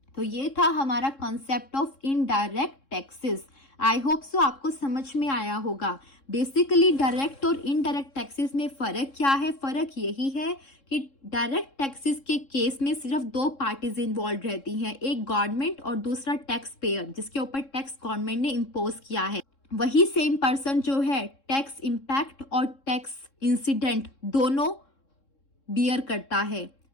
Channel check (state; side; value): late; right; 3.7 ms